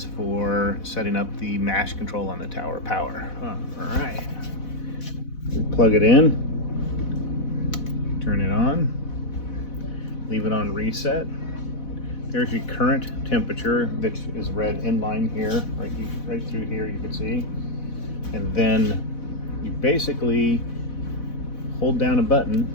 for setting up the mash control on the tower power. All right. Plug it in, turn it on, leave it on reset. There's your current temperature that is read in line here, right through here you can see. And then you basically hold down a button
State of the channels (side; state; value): right; late; 4.1 ms